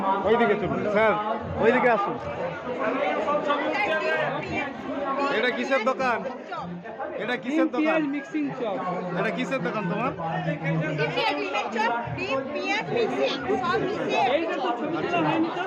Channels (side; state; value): both; identical; correlation 1.00